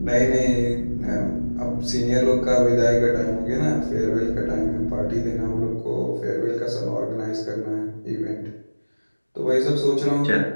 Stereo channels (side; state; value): both; inverted; correlation -1.00